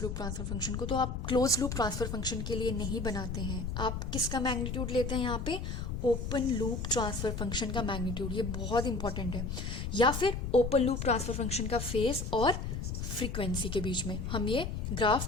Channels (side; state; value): left; noise; rumble, 4 dB below the sound